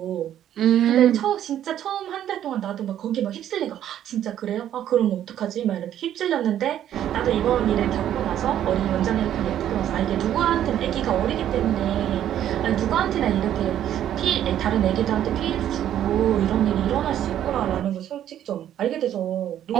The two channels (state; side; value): quieter; left; 11.0 dB